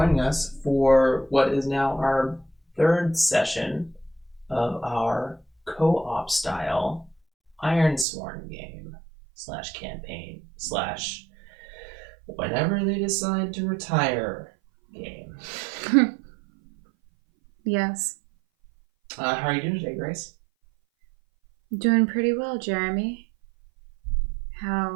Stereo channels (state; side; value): drops out; left; at 8.1 s